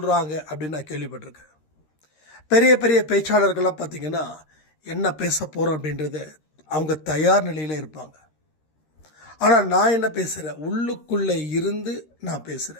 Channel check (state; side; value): late; right; 13 ms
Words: அப்படின்னு நான் கேள்விப்பட்டிருக்கேன். பெரிய பெரிய பேச்சாளர்கள்லாம் பார்த்திங்கன்னா என்ன பேச போகிறோம் அப்படின்றத அவங்க தயார் நிலையில் இருப்பாங்க. ஆனால் நான் என்ன பேசுகிறேன், உள்ளுக்குள்ளே இருந்து நான்